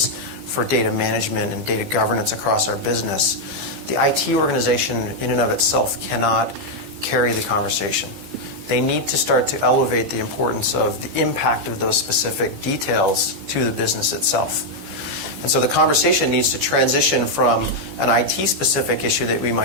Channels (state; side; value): late; left; 14 ms